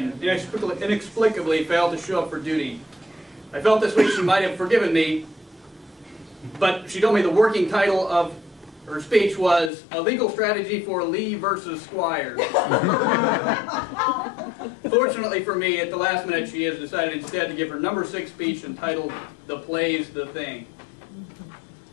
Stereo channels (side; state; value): right; drops out; at 9.7 s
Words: inexplicably failed to show up for duty. I felt this week she might have forgiven me, but she told me the working title of her speech was A Legal Strategy for Lee versus Squires. Fortunately for me, at the last minute, she has decided instead to give her number 6 speech entitled The Play's the Thing.